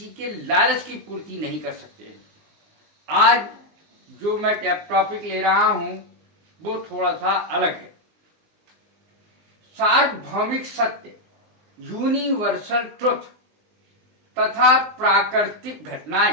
के लालच की पूर्ति नहीं कर सकते। आज जो मैं टॉपिक ले रहा हूं वो थोड़ा सा अलग है। सार्वभौमिक सत्य, यूनिवर्सल ट्रुथ तथा प्राकृतिक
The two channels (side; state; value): left; late; 19 ms